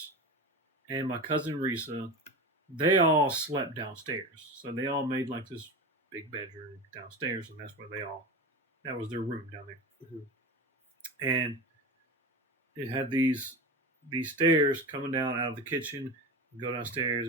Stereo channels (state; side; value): normal; both; correlation 0.27